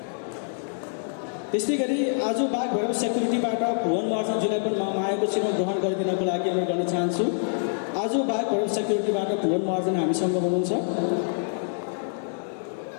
त्यस्तै गरी आज बाघभैरव सेक्युरिटीबाट भुवन महर्जनज्यूलाई पनि म मायाको चिनो ग्रहण गरिदिनको लागि अनुरोध गर्न चाहन्छु। आज बाघभैरव सेक्युरिटीबाट भुवन महर्जन हामीसँग हुनुहुन्छ।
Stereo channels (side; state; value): right; silent; 61 dB below the other